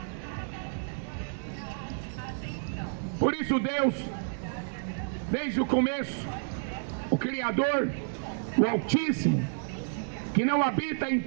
Por isso Deus, desde o começo, o Criador, o Altíssimo, que não habita em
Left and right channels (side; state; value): left; silent; digital silence